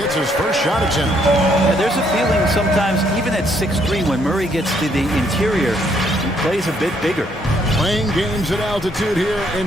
his first shot attempt. Yeah, there's a feeling sometimes, even at 6'3", when Murray gets to the interior, he plays a bit bigger. Playing games at altitude here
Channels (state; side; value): normal; both; correlation 0.70